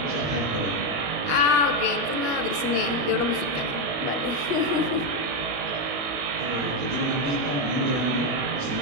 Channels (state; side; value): late; left; 21 ms